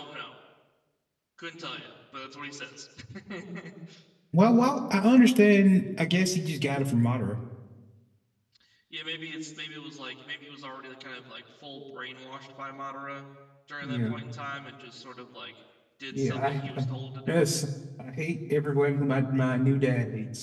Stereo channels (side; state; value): both; identical; correlation 1.00